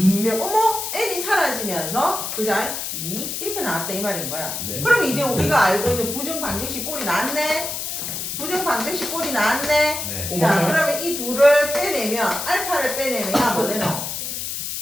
어머 m이 사라지면서 그자 2 이렇게 나왔다 이 말인 거야. 네. 그러면 이제 우리가 알고 있는 부정 방정식 꼴이 나왔네. 부정 방정식 꼴이 나왔네. 네. 자 그러면 이 둘을 빼내면 알파를 빼내면 뭐 되노?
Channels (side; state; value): left; noise; hiss, 4 dB below the sound